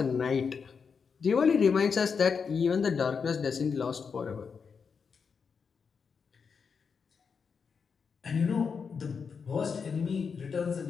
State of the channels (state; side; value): quieter; right; 5.8 dB